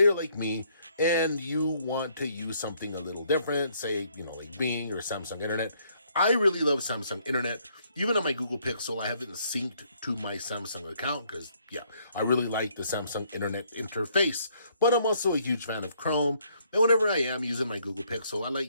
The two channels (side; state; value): both; inverted; correlation -0.68